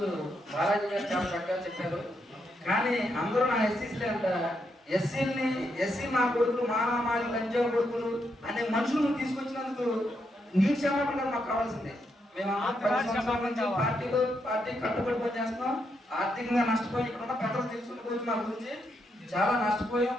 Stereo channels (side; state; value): both; normal; correlation 0.80